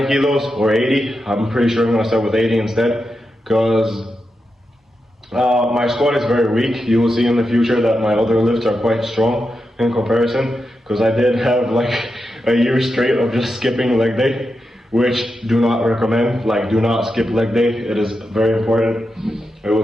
kilos or 80. I'm pretty sure I'm gonna start with 80 instead, because my squat is very weak. You will see in the future that my other lifts are quite strong in comparison, because I did have like a year straight of just skipping leg day, which do not recommend. Like, do not skip leg day. It is very important. It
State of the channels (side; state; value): both; normal; correlation 0.88